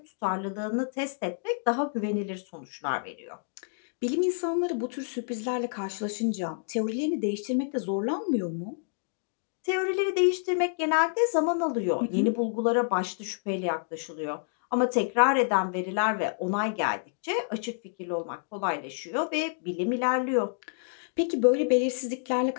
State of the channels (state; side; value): silent; right; digital silence